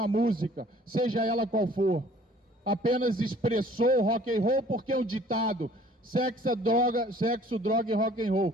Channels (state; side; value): normal; both; correlation 0.54